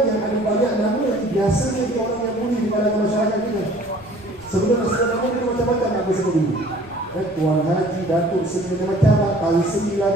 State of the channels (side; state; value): left; noise; rumble, 24 dB below the sound